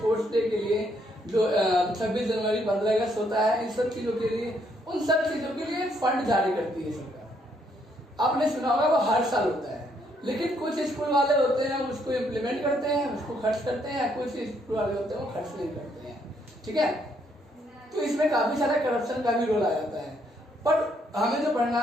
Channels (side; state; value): both; normal; correlation 0.71